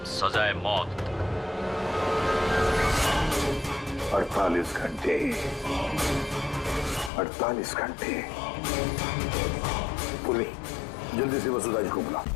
सजा है मौत। 48 घंटे। 48 घंटे। पूर्वी, जल्दी से वसुधा जी को बुला।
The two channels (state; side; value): drops out; right; at 7.1 s